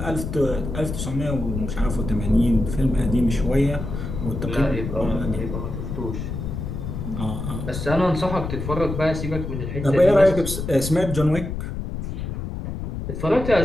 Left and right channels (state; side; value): noise; left; rumble, 5 dB below the sound